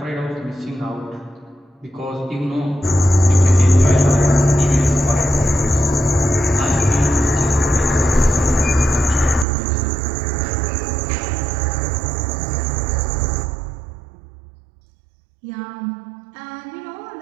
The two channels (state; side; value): drops out; left; at 9.5 s